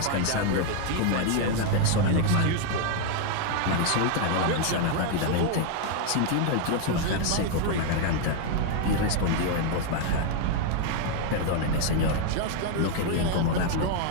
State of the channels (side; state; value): both; different; correlation 0.00